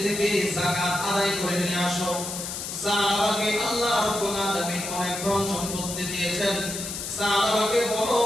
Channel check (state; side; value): noise; left; hiss, 6 dB below the sound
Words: থেকে যাকাত আদায় করে নিয়ে আসো। সাহাবাকে আল্লাহ রাব্বুল আলামিন অনেক ধন সম্পত্তি দিয়েছেন, সাহাবাকে বলো